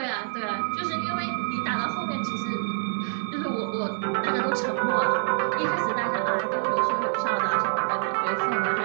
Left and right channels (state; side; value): silent; left; digital silence